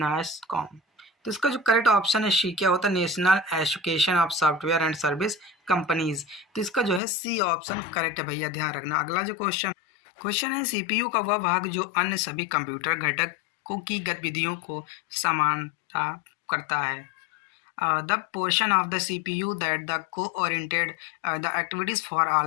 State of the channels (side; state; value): right; drops out; at 7.0 s